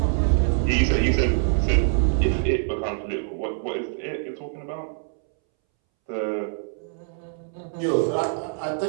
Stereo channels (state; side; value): silent; left; 62 dB below the other